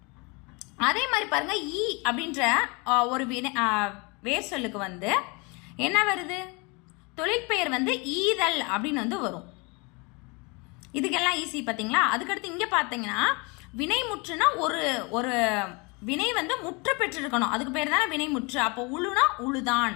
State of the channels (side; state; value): right; quieter; 29.3 dB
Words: அதே மாதிரி பாருங்க, ஈ அப்படின்ற ஒரு வேர் சொல்லுக்கு வந்து என்ன வருது? தொழிற்பெயர் வந்து ஈதல் அப்படின்னு வந்து வரும். இதுக்கெல்லாம் ஈஸி பாத்தீங்களா? அதுக்கடுத்து இங்க பாத்தீங்கன்னா வினைமுற்றுனா ஒரு ஒரு வினை வந்து முற்று பெற்றிருக்கணும், அதுக்கு பேர் தானே வினைமுற்று. அப்போ உழுனா உழுதான்,